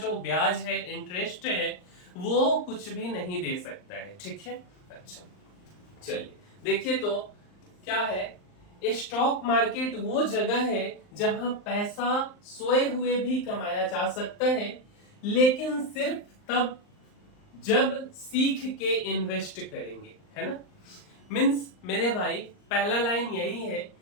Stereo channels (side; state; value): right; late; 39 ms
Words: ब्याज है, इंटरेस्ट है, वो कुछ भी नहीं दे सकता है। ठीक है, अच्छा चलिए देखिए तो क्या है। स्टॉक मार्केट वो जगह है जहां पैसा सोए हुए भी कमाया जा सकता है, लेकिन सिर्फ तब जब सीख के इन्वेस्ट करेंगे, है ना। मीन्स मेरे भाई पहला लाइन यही है